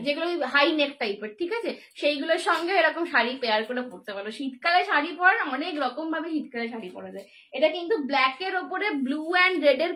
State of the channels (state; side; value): identical; both; correlation 1.00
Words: যেগুলো হাই নেক টাইপের, ঠিক আছে, সেইগুলোর সঙ্গে এরকম শাড়ি পেয়ার করে পরতে পারো। শীতকালে শাড়ি পরা অনেক রকম ভাবে শীতকালে শাড়ি পরা যায়। এটা কিন্তু ব্ল্যাক এর ওপরে ব্লু অ্যান্ড রেড এর